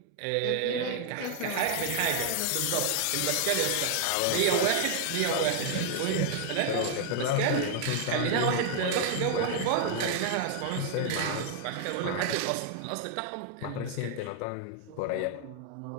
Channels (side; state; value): both; different; correlation 0.00